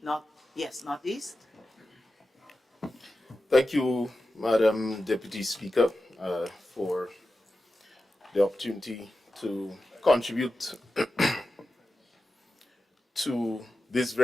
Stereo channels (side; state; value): both; normal; correlation 0.92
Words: Thank you, Madam Deputy Speaker, for the opportunity to contribute to this